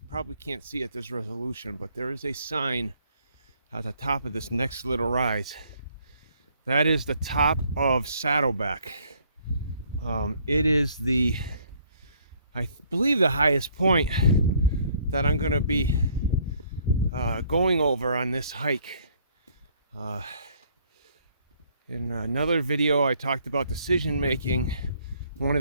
probably can't see at this resolution, but there is a sign at the top of this next little rise. That is the top of Saddleback. It is I believe, the highest point that I'm going to be going over on this hike. In another video, I talked about decision making. One of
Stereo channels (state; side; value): inverted; both; correlation -0.63